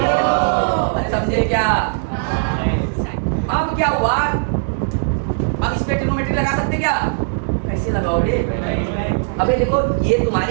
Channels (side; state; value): left; silent; digital silence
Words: अरे समझे क्या? अब क्या हुआ? अब इस पे ट्रिग्नोमेट्री लगा सकते क्या? कैसे लगाओगे? अबे देखो, ये